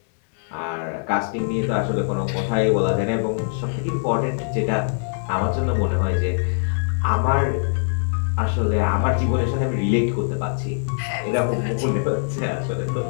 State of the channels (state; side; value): silent; right; digital silence